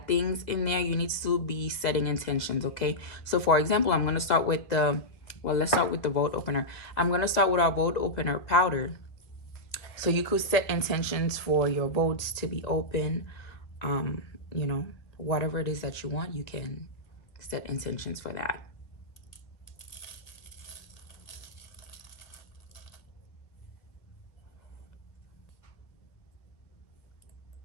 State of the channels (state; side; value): late; right; 2.1 ms